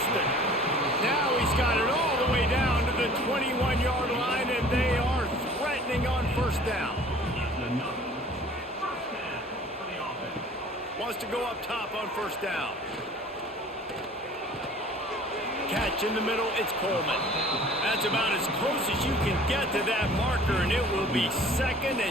Now he's got it all the way down to the 21-yard line, and they are threatening on first down. Wants to go up top on first down. Catch in the middle, it's Coleman. That's about as close as you can get to that marker, and it will be second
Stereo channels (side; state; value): both; normal; correlation 0.49